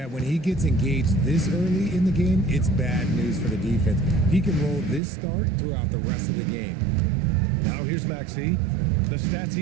when he gets engaged this early in the game, it's bad news for the defense. He can roll this start throughout the rest of the game. Now here's Maxey. The stats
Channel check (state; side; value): drops out; left; at 5.0 s